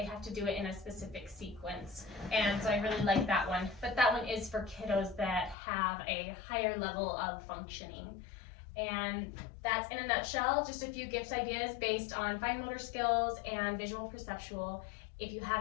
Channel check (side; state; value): right; drops out; at 5.6 s